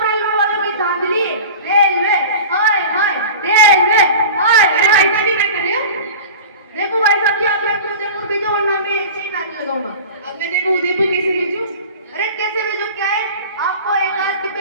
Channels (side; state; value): both; inverted; correlation -0.35